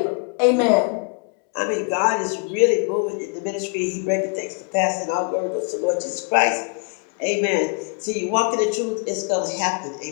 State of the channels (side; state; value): right; quieter; 37.8 dB